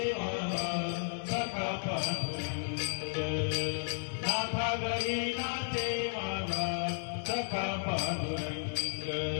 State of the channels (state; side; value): silent; right; 55 dB below the other